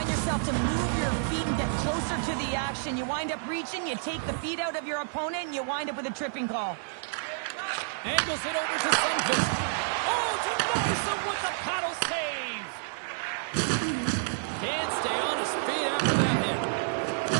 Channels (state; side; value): silent; left; 58 dB below the other